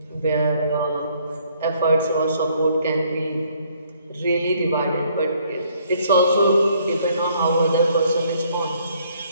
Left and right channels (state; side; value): inverted; both; correlation -0.65